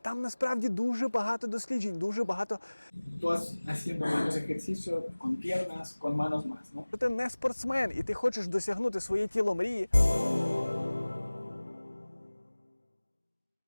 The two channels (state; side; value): inverted; both; correlation -1.00